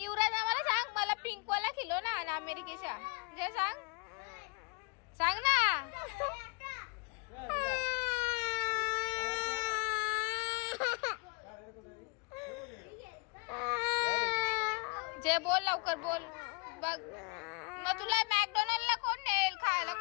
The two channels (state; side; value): quieter; right; 29.9 dB